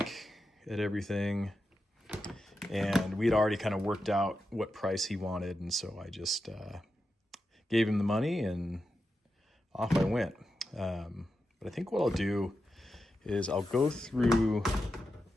at everything. And we'd already kind of worked out what price he wanted, and so I just gave him the money and off I went. But I think what I'll do is I'll go through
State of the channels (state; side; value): normal; both; correlation 0.89